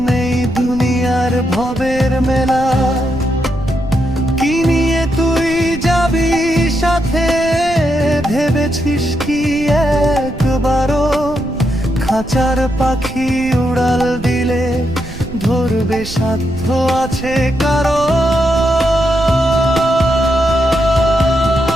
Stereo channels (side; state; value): right; noise; rumble, 12 dB below the sound